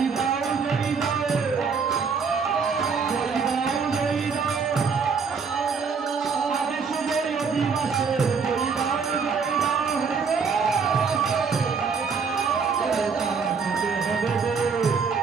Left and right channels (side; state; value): left; quieter; 5.5 dB